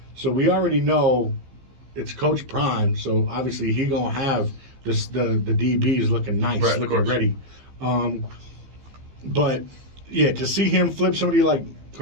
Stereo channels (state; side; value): late; left; 15 ms